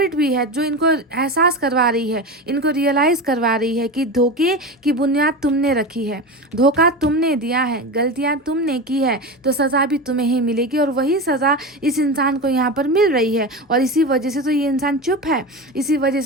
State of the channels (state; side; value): normal; both; correlation 0.24